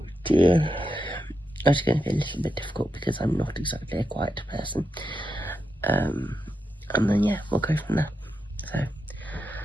dear. It's going to be a little bit difficult because I'm not exactly a quiet person. And then, yeah, we'll go from there. So,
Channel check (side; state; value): both; normal; correlation 0.86